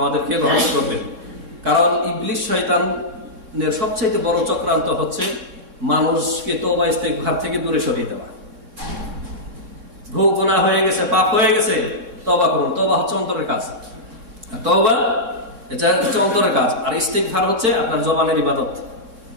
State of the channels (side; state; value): left; late; 3.6 ms